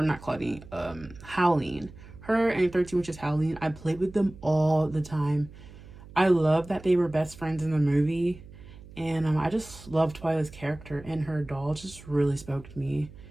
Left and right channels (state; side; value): noise; right; hum, 18 dB below the sound